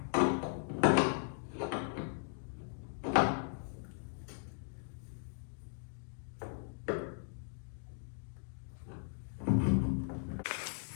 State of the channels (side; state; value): right; silent; digital silence